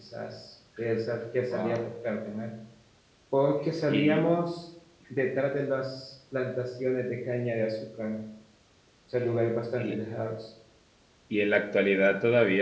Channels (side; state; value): both; identical; correlation 1.00